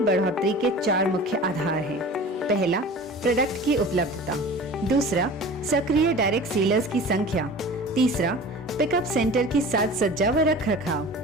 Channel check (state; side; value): normal; both; correlation 0.39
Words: के 4 मुख्य आधार हैं। पहला, प्रोडक्ट की उपलब्धता। दूसरा, सक्रिय डायरेक्ट सेलर्स की संख्या। तीसरा, पिकअप सेंटर की साज सज्जा व रखरखाव।